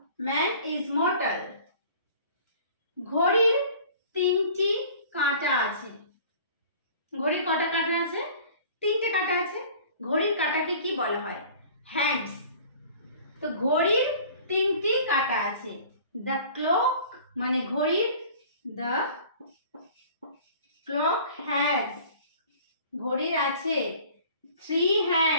Man is mortal. ঘড়ির তিনটি কাঁটা আছে। ঘড়ির কটা কাঁটা আছে? তিনটে কাঁটা আছে। ঘড়ির কাঁটাকে কি বলা হয়? হ্যান্ডস। তো ঘড়ির তিনটি কাঁটা আছে। দ্য ক্লক মানে ঘড়ির, দ্য ক্লক হ্যাজ, ঘড়ির আছে three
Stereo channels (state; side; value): inverted; both; correlation -0.47